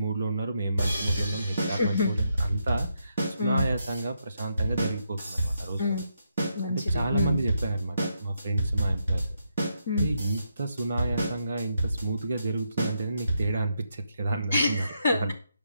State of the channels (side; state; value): both; inverted; correlation -0.80